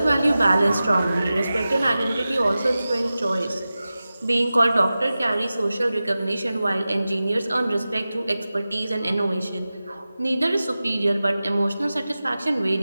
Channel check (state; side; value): inverted; both; correlation -0.95